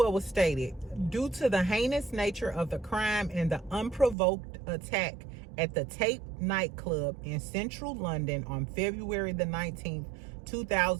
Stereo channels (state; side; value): drops out; left; at 4.2 s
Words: was stated. Due to the heinous nature of the crime and the unprovoked attack at the Tape nightclub in central London on February the 19th,